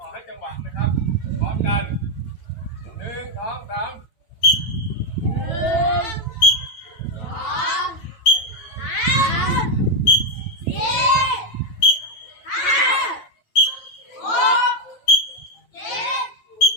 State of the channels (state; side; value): late; right; 9.0 ms